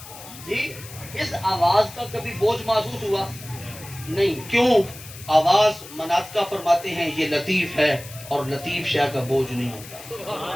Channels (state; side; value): noise; left; hiss, 16 dB below the sound